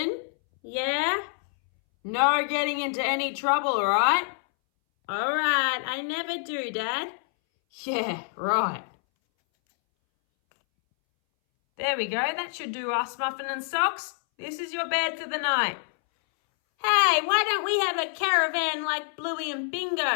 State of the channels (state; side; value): silent; right; 60 dB below the other